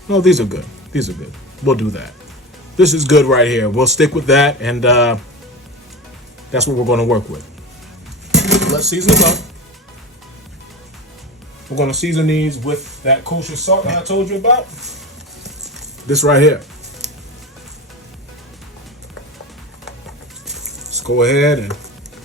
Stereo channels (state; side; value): normal; both; correlation 0.27